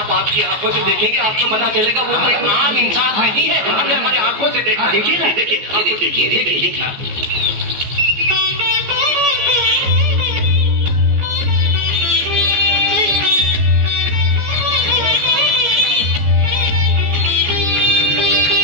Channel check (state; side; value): late; left; 14 ms